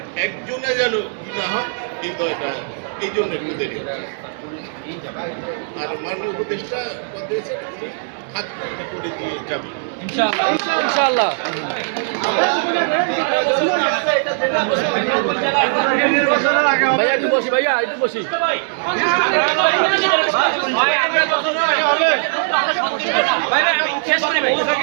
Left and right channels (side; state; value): left; silent; 64 dB below the other